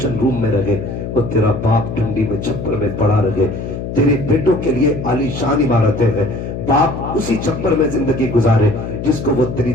روم میں رہے اور تیرا باپ ٹھنڈی میں چھپر میں پڑا رہے، تیرے بیٹوں کے لیے عالی شان عمارتیں ہیں، باپ اسی چھپر میں زندگی گزارے جس کو وہ تیری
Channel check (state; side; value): noise; left; hum, 6 dB below the sound